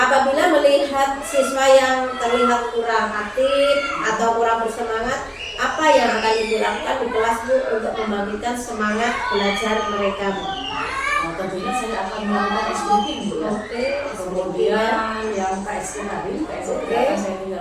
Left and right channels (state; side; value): identical; both; correlation 1.00